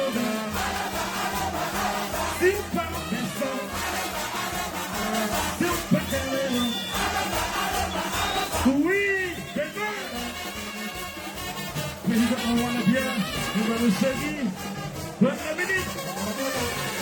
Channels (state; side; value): identical; both; correlation 1.00